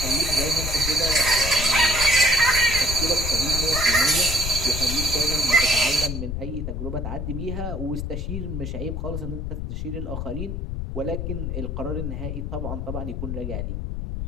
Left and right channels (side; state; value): left; noise; rumble, 4 dB below the sound